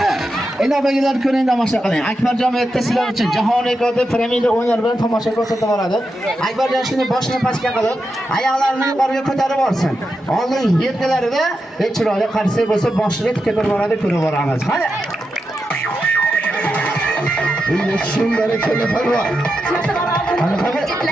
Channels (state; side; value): normal; both; correlation 0.87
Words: Endi obagilar ko'ring, tomosha qiling. Akbarjon erta sizlar uchun jahon rekordi piramida o'yinlar bilan tomosha ko'rsatib boradi. Akbarjon shuni boshini pastga qilib, oyoqlarini yuqoriga ko'tarib olsin. Oldin yelkalarida chiroyli qarshi bo'lsa, boshini tikib boradi, ko'rib boramiz. Hadi. Endi shunday telefon. Ana qara.